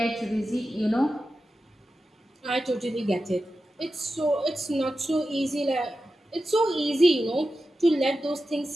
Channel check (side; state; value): both; normal; correlation 0.92